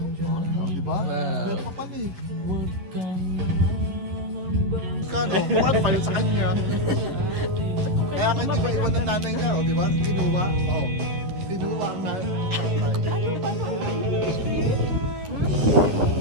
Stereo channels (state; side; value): late; left; 11 ms